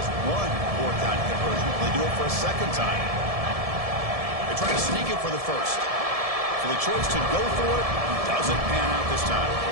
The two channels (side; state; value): left; late; 1.7 ms